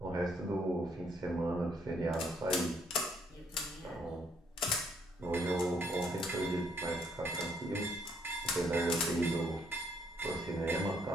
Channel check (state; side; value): normal; both; correlation 0.69